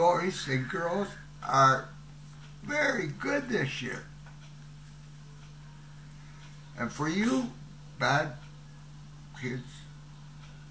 and girls are very good this year. And for you bad kids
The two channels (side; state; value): both; identical; correlation 1.00